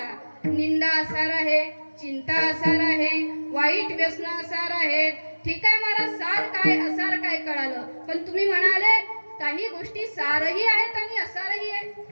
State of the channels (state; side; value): inverted; both; correlation -1.00